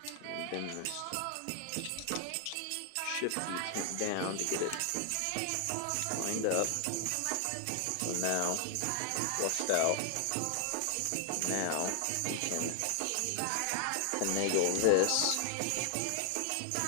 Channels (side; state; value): both; different; correlation 0.00